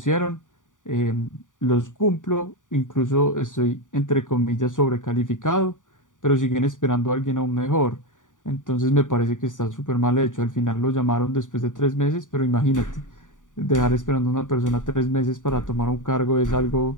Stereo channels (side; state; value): right; late; 0.87 ms